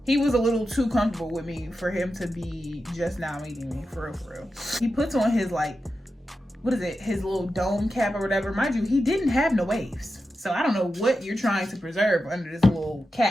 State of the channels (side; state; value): both; normal; correlation 0.90